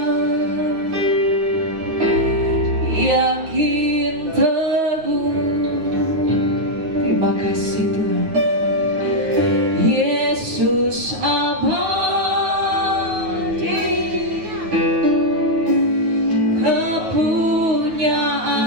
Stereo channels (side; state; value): left; late; 9.4 ms